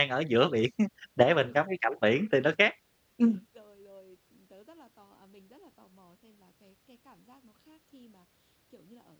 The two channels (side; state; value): both; identical; correlation 1.00